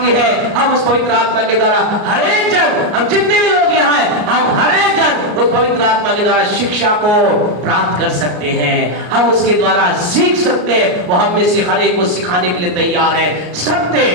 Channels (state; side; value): late; left; 33 ms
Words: ये है, हम उस पवित्र आत्मा के द्वारा हर एक जन, हम जितने भी लोग यहाँ हैं, हम हर एक जन उस पवित्र आत्मा के द्वारा शिक्षा को प्राप्त कर सकते हैं। हम उसके द्वारा सीख सकते हैं। वो हम में से हर एक को सिखाने के लिए तैयार है। सत्य